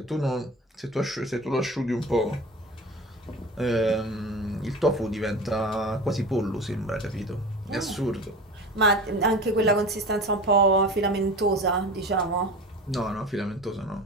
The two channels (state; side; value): normal; both; correlation 0.34